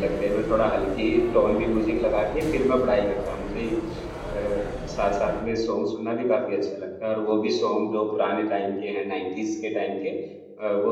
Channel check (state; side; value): identical; both; correlation 1.00